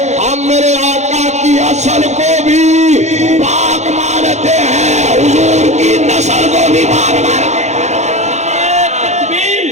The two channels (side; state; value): left; late; 0.33 ms